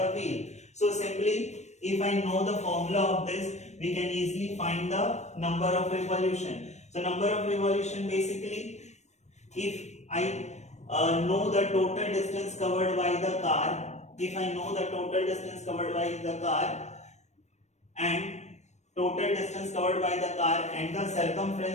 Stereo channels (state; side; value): late; right; 0.33 ms